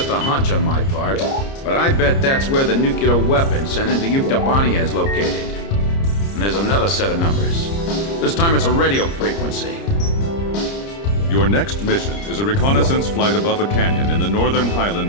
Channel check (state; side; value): late; right; 30 ms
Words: a hunch on my part, but I bet that's where the nuclear weapon sent into Yuktobania is located. And there's another set of numbers. This time it's a radio frequency. Your next mission is a reconnaissance flight above a canyon in the northern